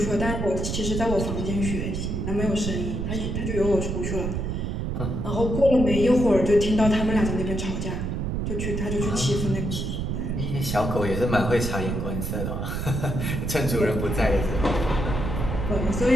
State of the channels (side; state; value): right; noise; rumble, 2 dB below the sound